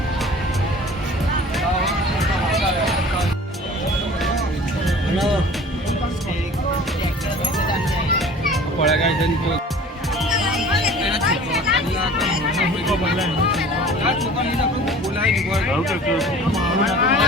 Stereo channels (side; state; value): both; normal; correlation 0.45